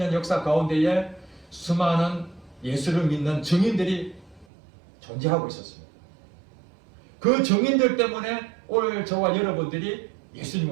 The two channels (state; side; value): drops out; left; at 4.5 s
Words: 역사 가운데에 수많은 예수를 믿는 증인들이 존재하고 있었습니다. 그 증인들 때문에 오늘 저와 여러분들이